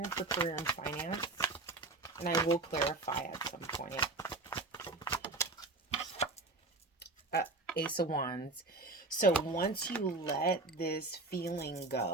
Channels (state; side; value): quieter; left; 3.3 dB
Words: for career and finance? And I will clarify at some point. Ace of Wands. So once you let this feeling